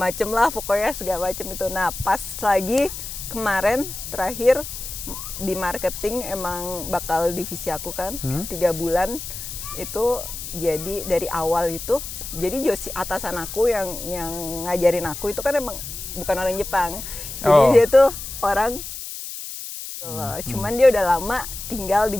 lah, pokoknya segala macem itu. Nah pas lagi kemarin terakhir di marketing emang bakal divisi aku kan 3 bulan itu, jadi dari awal itu jadi atasan aku yang ngajarin aku itu kan emang bukan orang Jepang, jadi dia tuh orang cuman dia udah lama tinggal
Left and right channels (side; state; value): left; noise; hiss, 9 dB below the sound